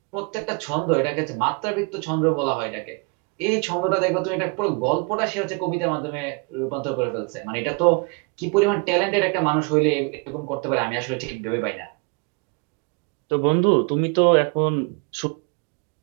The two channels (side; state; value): left; quieter; 31.8 dB